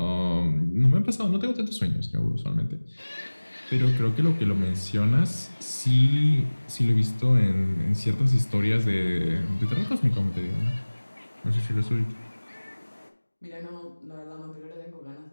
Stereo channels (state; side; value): inverted; both; correlation -1.00